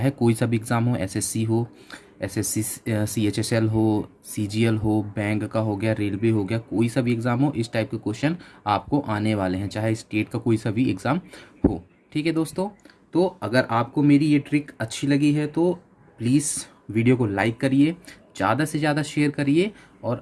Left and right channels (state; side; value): identical; both; correlation 1.00